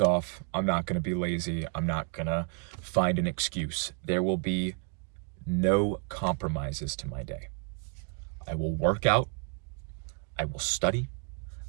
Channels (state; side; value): quieter; left; 37.9 dB